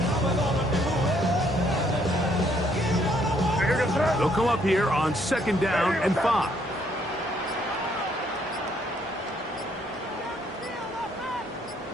They'll come up here on 2nd down and 5.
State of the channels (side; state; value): both; normal; correlation 0.68